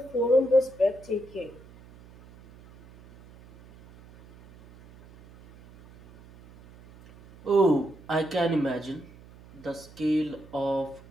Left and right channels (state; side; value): noise; right; hum, 22 dB below the sound